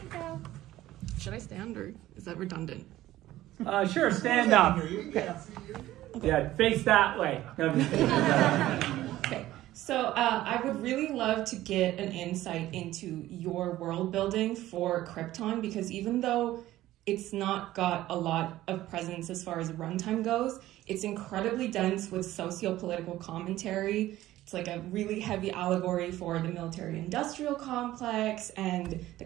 Should I stand or is that redundant? Sure, stand up. Okay. Yeah, face that way. No, I'm just kidding. Okay, so I would really love to get an insight into your world building for Krypton, because even though it's not got a lot of presence as far as runtime goes, it's incredibly dense with socio-political commentary. It's like a really heavy allegory for the military-industrial complex and the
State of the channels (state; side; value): quieter; left; 15.1 dB